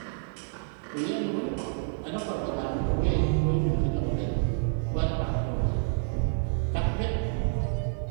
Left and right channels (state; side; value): silent; left; 59 dB below the other